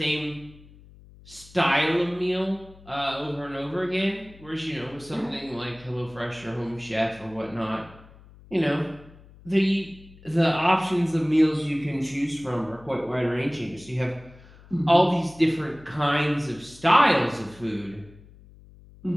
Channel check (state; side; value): noise; left; hum, 23 dB below the sound